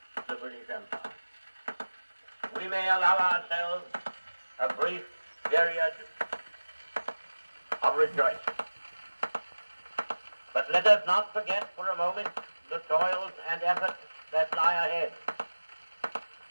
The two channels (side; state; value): both; inverted; correlation -1.00